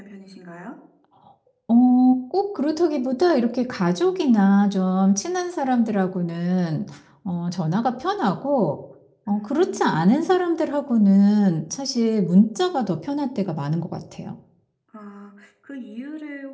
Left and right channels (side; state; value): both; identical; correlation 1.00